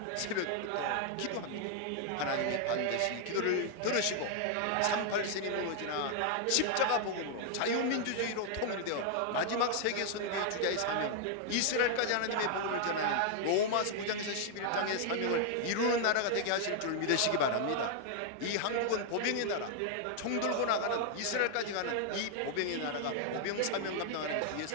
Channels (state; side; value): different; both; correlation 0.00